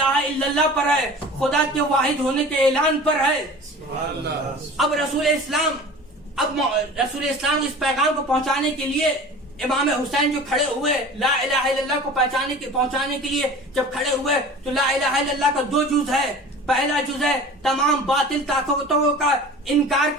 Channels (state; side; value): normal; both; correlation 0.40